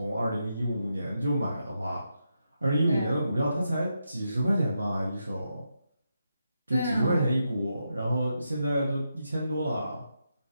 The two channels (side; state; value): both; inverted; correlation -0.84